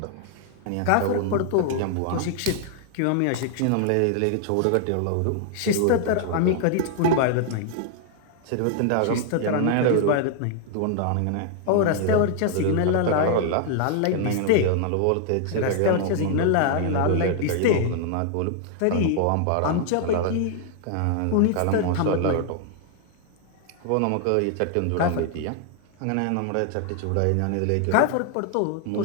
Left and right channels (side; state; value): both; different; correlation 0.00